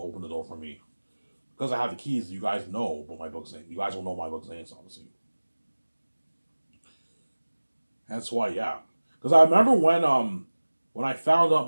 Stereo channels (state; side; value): inverted; both; correlation -1.00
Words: open the door for me. Because I have the keys, you guys know what my book's name. You guys will know my book's name, obviously. That's why, yeah. Because I remember when I found out